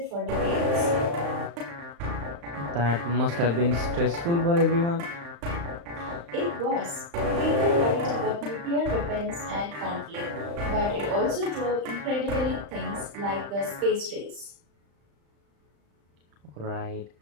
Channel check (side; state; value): left; late; 35 ms